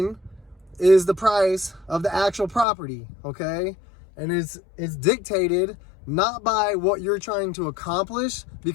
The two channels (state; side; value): drops out; right; at 2.7 s